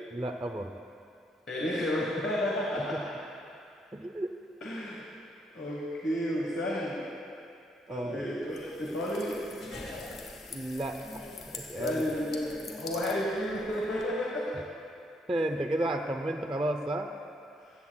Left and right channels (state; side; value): normal; both; correlation 0.73